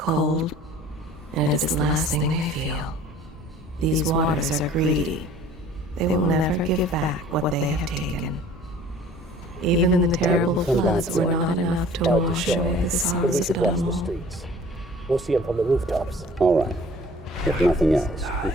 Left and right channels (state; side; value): normal; both; correlation 0.49